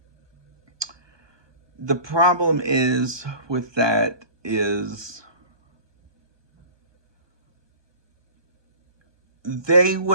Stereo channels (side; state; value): left; late; 1.2 ms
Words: The problem is with that is they